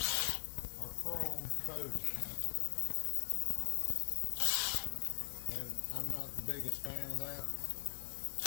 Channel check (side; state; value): right; silent; digital silence